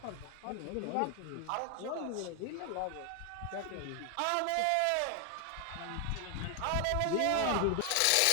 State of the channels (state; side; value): different; both; correlation 0.00